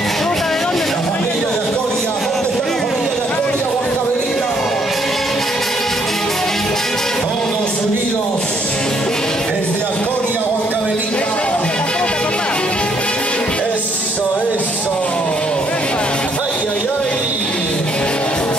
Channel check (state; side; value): normal; both; correlation 0.69